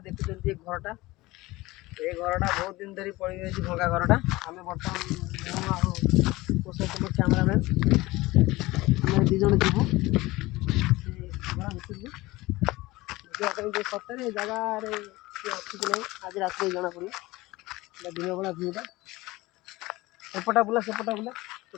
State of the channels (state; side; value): quieter; right; 19.9 dB